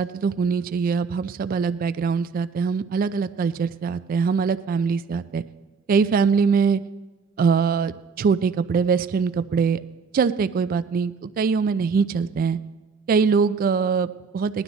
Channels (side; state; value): left; quieter; 5.3 dB